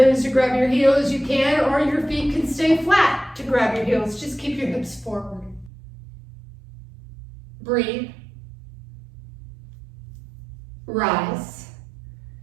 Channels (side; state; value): left; drops out; at 5.7 s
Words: to grab your heels, you can. Or your feet can stay flat to grab your heels. Just keep your hips forward. Breathe. Rise.